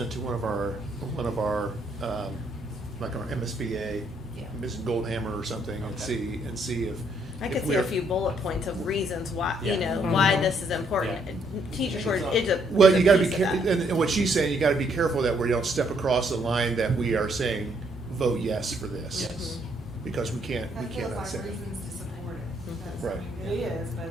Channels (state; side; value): normal; both; correlation 0.71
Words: it to one of our, like our MSBA, Yeah. Mrs. Goldhammer or something, Okay. and see I if could see we're- a few bullet points of reasons why, Yeah. you know, Mhm. why this is important. Yeah. Teachers were, it's a. Well, it's a you gotta be, piece of careful, that. and what she's saying, you gotta be careful that we don't step across the line that we are saying, vote yes for this. Yes. Because we That feels cannot like say that. reasons to support it. That's- Right. I mean, it is, but I